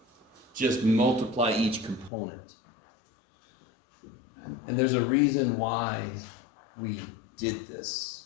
just multiply each component. And there's a reason why we did this.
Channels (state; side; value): drops out; right; at 2.1 s